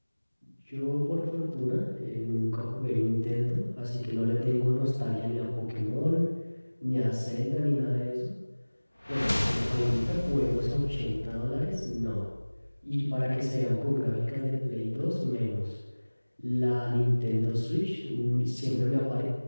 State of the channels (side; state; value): both; inverted; correlation -1.00